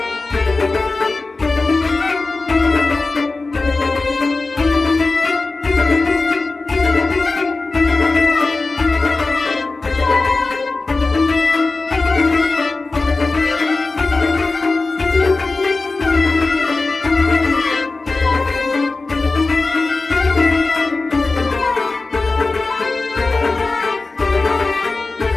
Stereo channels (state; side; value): quieter; right; 3.6 dB